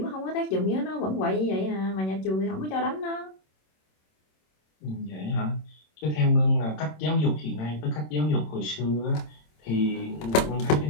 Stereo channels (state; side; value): late; right; 27 ms